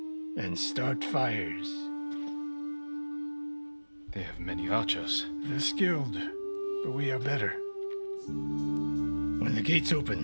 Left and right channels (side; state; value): both; inverted; correlation -1.00